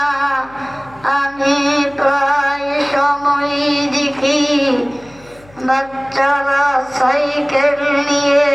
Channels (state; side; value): noise; left; hum, 26 dB below the sound